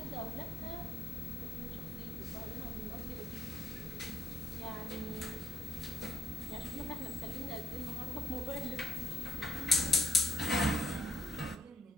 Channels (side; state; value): both; normal; correlation 0.70